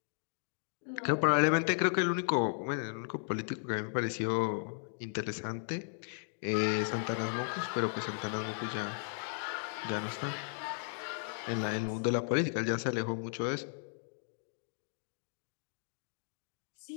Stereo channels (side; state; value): right; silent; digital silence